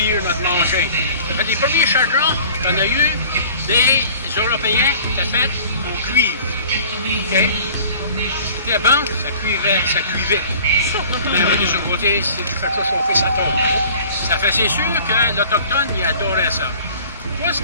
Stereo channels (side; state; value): both; inverted; correlation -0.47